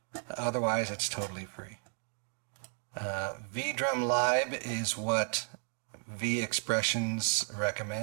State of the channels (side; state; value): left; silent; 55 dB below the other